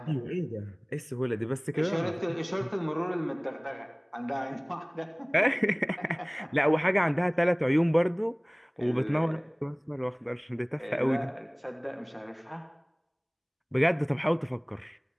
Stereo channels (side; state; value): both; identical; correlation 1.00